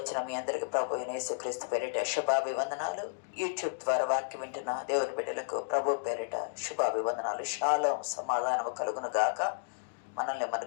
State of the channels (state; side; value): silent; right; digital silence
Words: మీ అందరికీ ప్రభు యేసుక్రీస్తు పేరిట శుభాభివందనాలు. యూట్యూబ్ ద్వారా వాక్యం వింటున్న దేవుని బిడ్డలకు ప్రభు పేరిట శుభాభివందనాలు. షాలోం, సమాధానము కలుగును గాక. మనల్ని మన